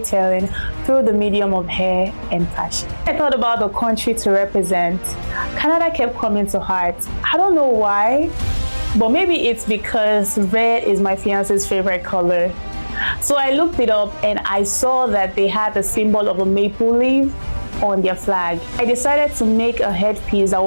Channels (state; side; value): inverted; both; correlation -1.00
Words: through the medium of hair and fashion. I thought about the country to represent. Canada kept coming to heart. I don't know why, but maybe it's because red is my fiance's favorite color. So I looked it up and I saw that they had the symbol of a maple leaf on their flag. I decided to make a headpiece that